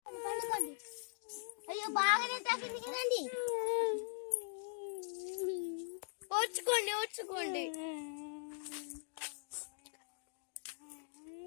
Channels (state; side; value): silent; right; digital silence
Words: అయ్యో బాగానే తగ్గింది కదండి. ఓర్చుకోండి ఓర్చుకోండి.